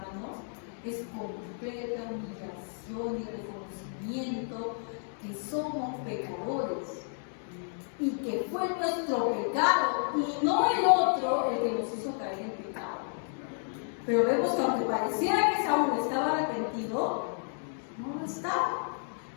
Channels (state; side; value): silent; right; 57 dB below the other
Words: es completa humillación y reconocimiento que somos pecadores. Y que fue nuestro pecado y no el otro el que nos hizo caer en pecado. Pero vemos que aunque pareciera que Saúl estaba arrepentido, no lo estaba,